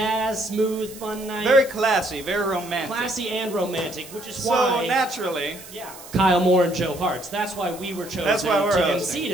smooth, fun night. Very classy, very romantic. Classy and romantic, which is So why... naturally... Yeah. Kyle Moore and Joe Hartz. That's why we were chosen to MC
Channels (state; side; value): noise; right; hiss, 17 dB below the sound